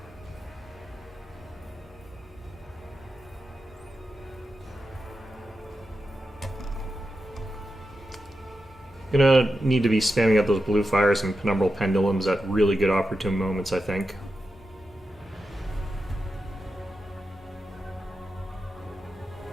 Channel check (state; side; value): normal; both; correlation 0.89